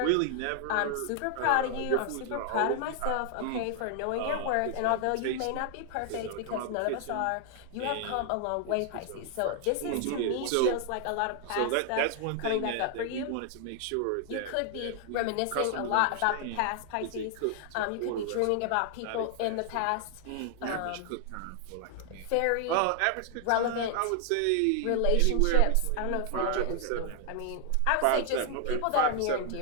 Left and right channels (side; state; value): both; different; correlation 0.00